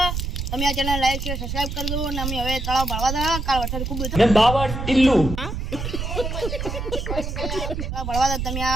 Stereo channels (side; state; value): right; noise; rumble, 4 dB below the sound